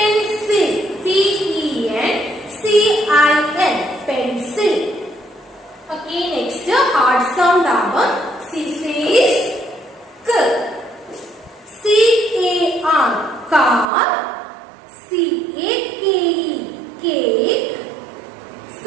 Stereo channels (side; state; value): left; drops out; at 13.9 s